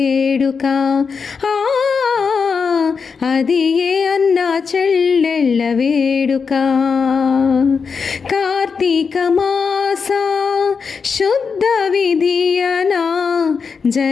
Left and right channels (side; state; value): right; quieter; 5.5 dB